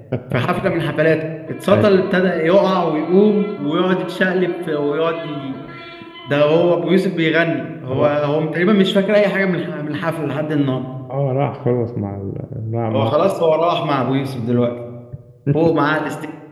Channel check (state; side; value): identical; both; correlation 1.00